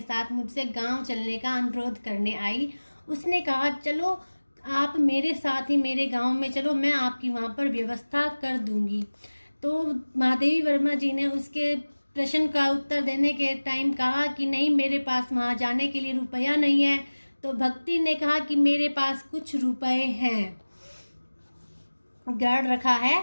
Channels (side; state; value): both; inverted; correlation -1.00